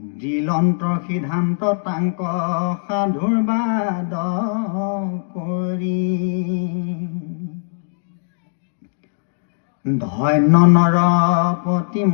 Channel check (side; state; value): right; silent; digital silence